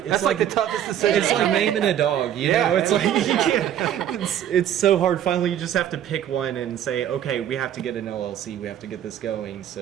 That's like the toughest decision. It's like naming a dog, you Yeah. know. It's like you can't. It's so hard. Finally, you just have to pick one and say, okay, we have to get an LLC. We have to get this going.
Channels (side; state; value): left; quieter; 10.5 dB